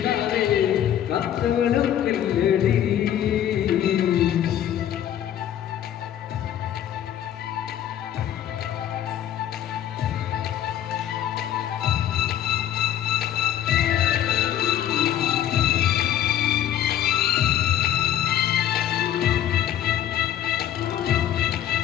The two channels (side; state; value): right; quieter; 11.0 dB